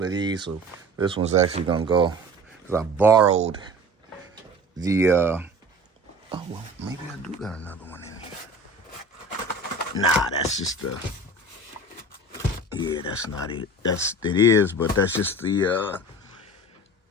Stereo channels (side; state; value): both; normal; correlation 0.40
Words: of these. So this one's actually going to go, because I borrowed the, oh, well, maybe I do got another one in here. Nah, that's just the... Yeah, that's not it. It is, but that's just the